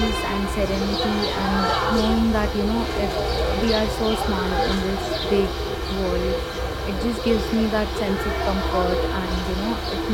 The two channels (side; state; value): both; identical; correlation 1.00